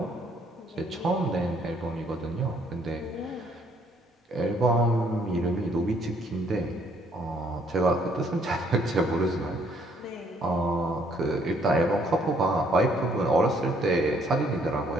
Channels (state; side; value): normal; both; correlation 0.66